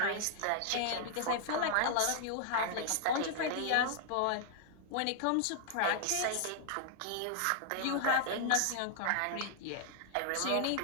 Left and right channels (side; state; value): both; different; correlation -0.01